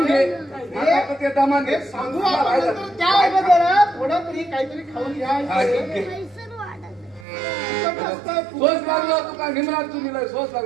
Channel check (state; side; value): drops out; left; at 7.2 s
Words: घे ते दमान घे सांगू आपण त्या अगोदर थोडं तरी काहीतरी खाऊन घ्या. सोस लागलो तुका निमरात तुम्ही सोस